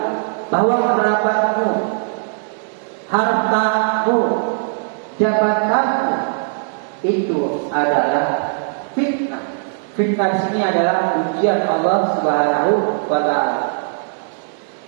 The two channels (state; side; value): silent; left; digital silence